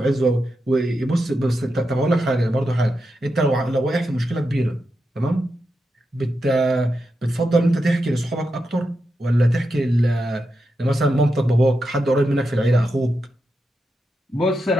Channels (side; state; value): both; normal; correlation 0.87